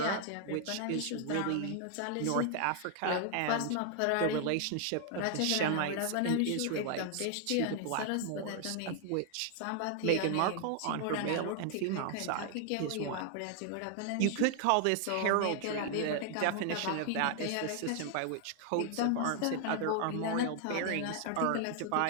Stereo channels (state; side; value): different; both; correlation 0.00